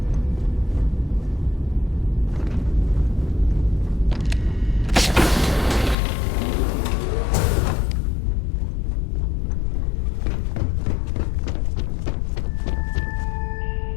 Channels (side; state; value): right; drops out; at 6.0 s